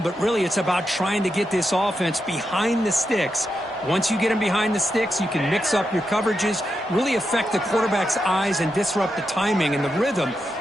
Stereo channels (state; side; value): normal; both; correlation 0.86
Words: but really it's about trying to get this offense behind the sticks. Once you get them behind the sticks, you can mix up your coverages, really affect the quarterback's eyes and disrupt the timing and the rhythm